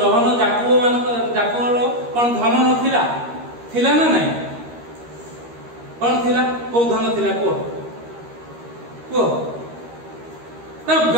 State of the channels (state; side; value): late; left; 13 ms